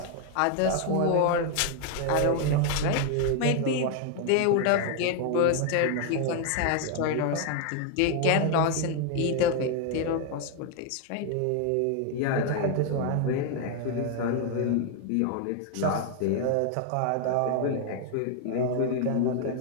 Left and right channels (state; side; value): different; both; correlation 0.00